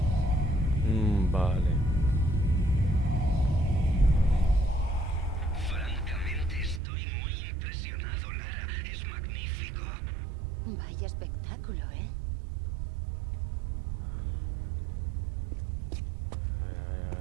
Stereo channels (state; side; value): drops out; left; at 6.8 s